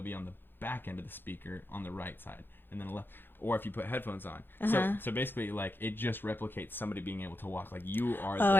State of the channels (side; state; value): right; late; 0.099 ms